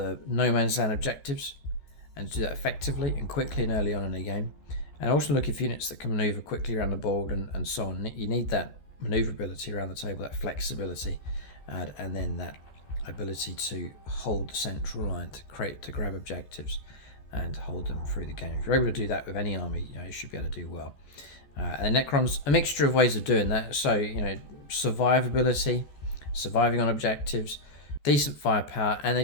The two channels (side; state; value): right; late; 14 ms